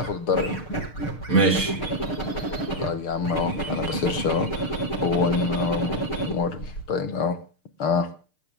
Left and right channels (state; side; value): late; right; 6.6 ms